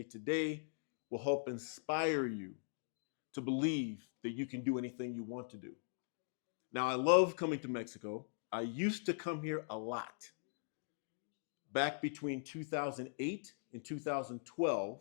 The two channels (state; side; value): silent; right; digital silence